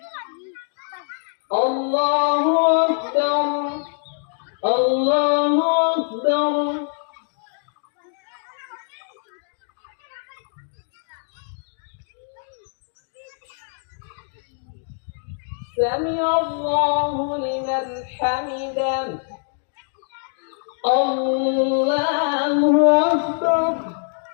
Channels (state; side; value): silent; right; digital silence